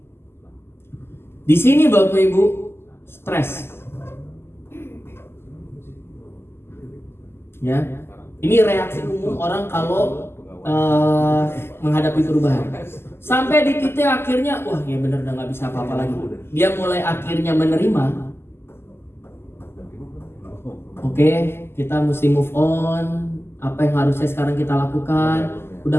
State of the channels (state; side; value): late; right; 0.12 ms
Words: Di sini Bapak Ibu stres. Ya, ini reaksi umum orang kalau menghadapi perubahan. Sampai di titik akhirnya, wah ya bener udah nggak bisa apa-apa lagi. Dia mulai akhirnya menerima. Oke, kita mesti move on. Apa yang harusnya sekarang kita lakukan,